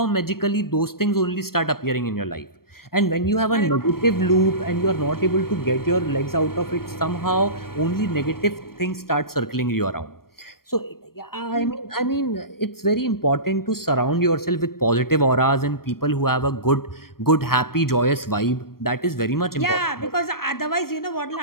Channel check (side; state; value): right; late; 0.93 ms